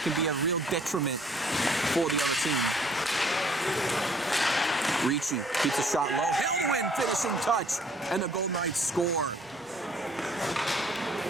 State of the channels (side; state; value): both; normal; correlation 0.60